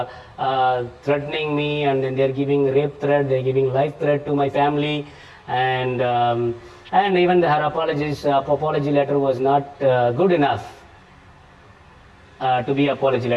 threatening me, and then they're giving rape threat, they're giving life threat to my family, and even her apology letter was not good enough to be apology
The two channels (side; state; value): both; identical; correlation 1.00